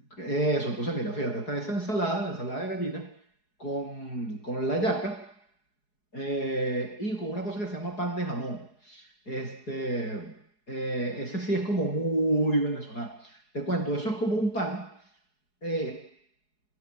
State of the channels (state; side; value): late; right; 4.8 ms